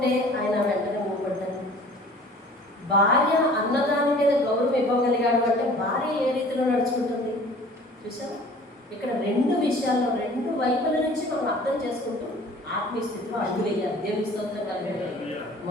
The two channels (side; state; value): both; normal; correlation 0.48